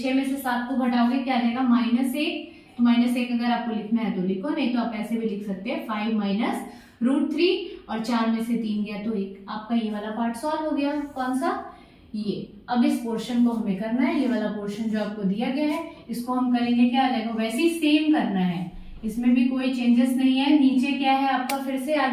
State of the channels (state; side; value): identical; both; correlation 1.00